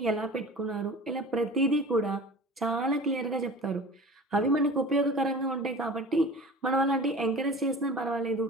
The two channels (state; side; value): normal; both; correlation 0.39